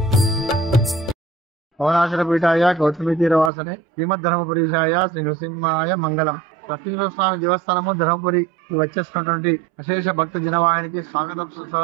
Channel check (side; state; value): left; drops out; at 3.5 s